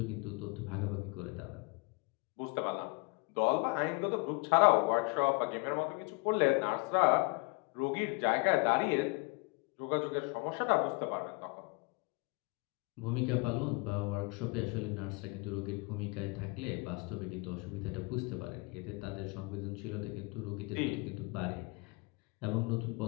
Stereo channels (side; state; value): right; quieter; 28.7 dB